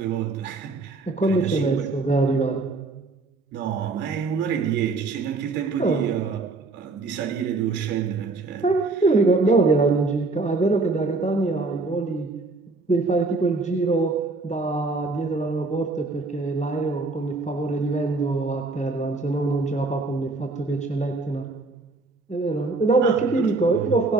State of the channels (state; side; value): quieter; left; 3.6 dB